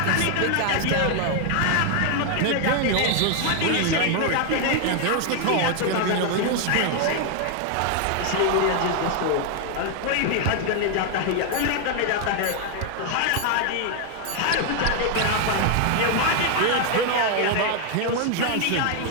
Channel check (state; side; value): different; both; correlation 0.00